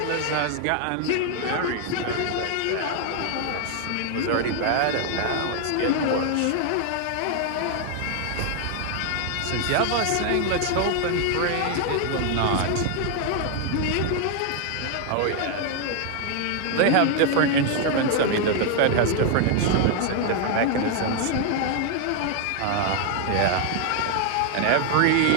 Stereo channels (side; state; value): both; different; correlation 0.00